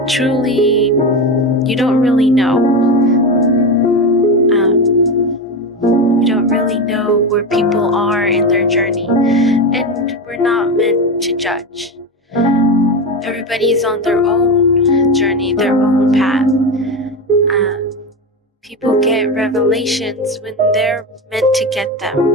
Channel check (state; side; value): normal; both; correlation 0.19